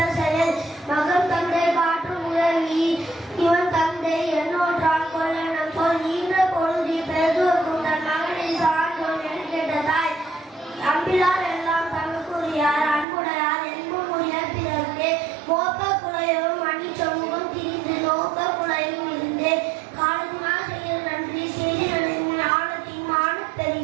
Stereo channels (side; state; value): left; drops out; at 13.1 s